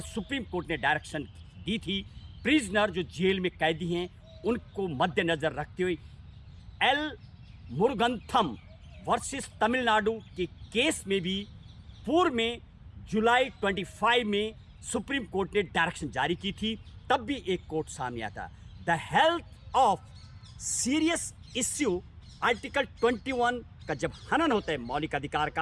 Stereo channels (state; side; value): identical; both; correlation 1.00